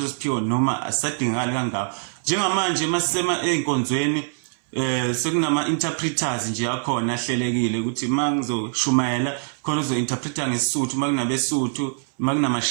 siphiwo noma asisadingakali kangako. Njengamanje masisema einkonzweni sekunama interpreters nje yakhona ahlelekile ukuthi mangizoshumayela khona uzo-interpreta ngesisuthu, makunabesuthu,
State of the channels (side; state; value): left; silent; 61 dB below the other